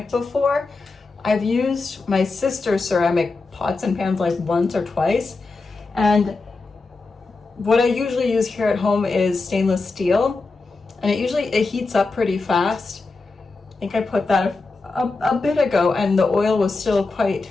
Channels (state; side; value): quieter; right; 3.8 dB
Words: before. I've used my sister's ceramic pots and pans like once or twice. And what I usually use here at home is stainless steel. And it heats up pretty fast. I think I put that a bit ago and the oil was still quite